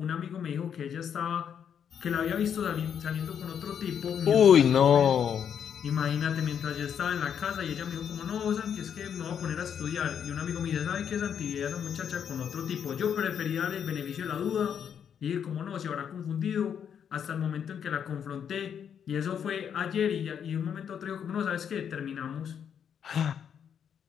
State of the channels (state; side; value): quieter; right; 8.1 dB